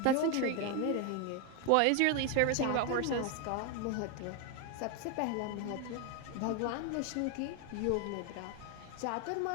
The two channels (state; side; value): different; both; correlation 0.01